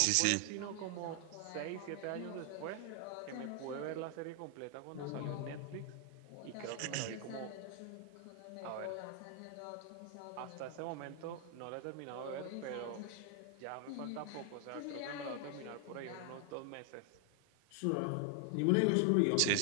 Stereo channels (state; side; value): different; both; correlation 0.00